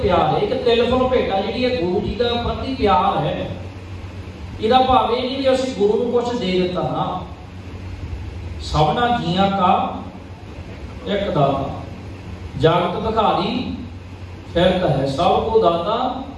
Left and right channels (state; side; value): identical; both; correlation 1.00